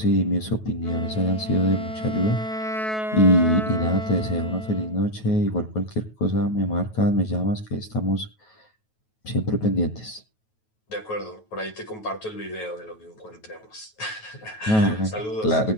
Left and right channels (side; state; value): right; late; 9.3 ms